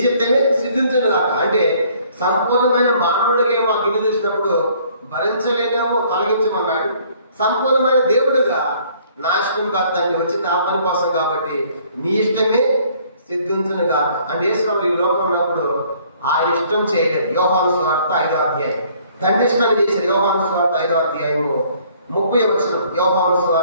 చిత్తమే సిద్ధించను కాక. అంటే సంపూర్ణమైన మానవుడిగా మా గిన్నె చూసినప్పుడు భరించలేనేమో తొలగించమన్నాడు. సంపూర్ణమైన దేవుడుగా నా ఇష్టం కాదు తండ్రి, వచ్చి నా పని కోసం కాబట్టి నీ ఇష్టమే సిద్ధించను కాక. అంటే యేసుప్రభువు ఈ లోకంలో ఉన్నప్పుడు ఆయన ఇష్టం చేయలేదు. యోహాను సువార్త 5వ అధ్యాయం తండ్రి ఇష్టాన్ని చేశారు. యోహాను సువార్త 5వ అధ్యాయము 30వ వచనం. యోహాను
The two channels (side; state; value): both; inverted; correlation -0.60